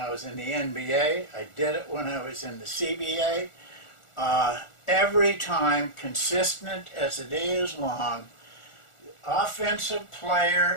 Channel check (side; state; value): right; late; 1.4 ms